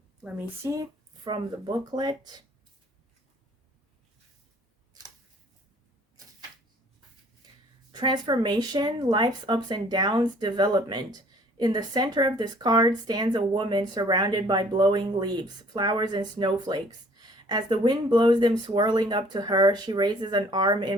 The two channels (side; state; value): both; normal; correlation 0.56